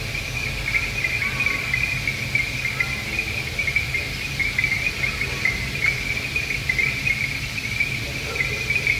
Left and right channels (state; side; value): identical; both; correlation 1.00